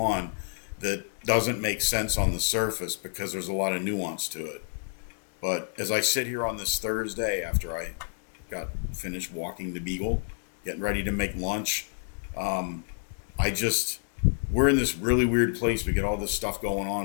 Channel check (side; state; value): right; silent; digital silence